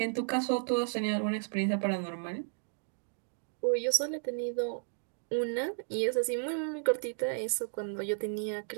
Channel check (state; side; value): silent; left; digital silence